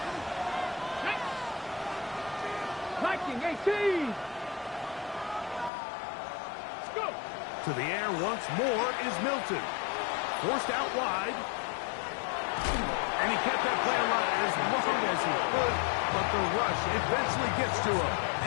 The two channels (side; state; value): right; drops out; at 5.7 s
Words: Viking 18. Let's go. To the air once more is Milton. Forced out wide. And he kept that play alive as long as he could, but the rush eventually gets to him